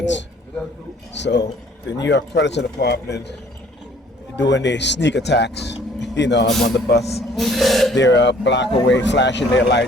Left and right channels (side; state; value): both; normal; correlation 0.57